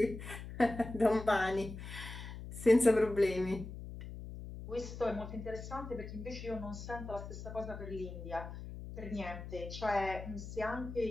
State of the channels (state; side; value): noise; left; hum, 10 dB below the sound